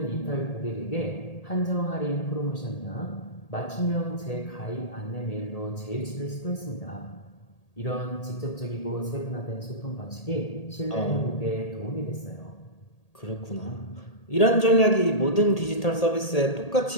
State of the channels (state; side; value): late; right; 1.8 ms